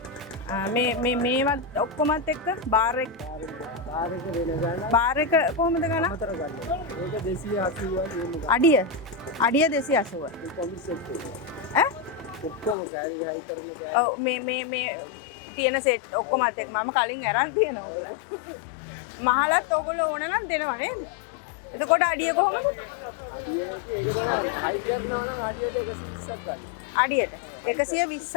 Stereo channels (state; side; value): drops out; right; at 12.8 s